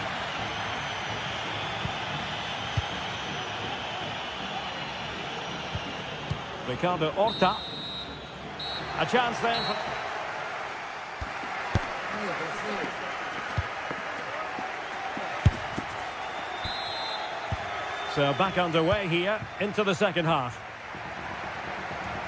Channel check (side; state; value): both; identical; correlation 1.00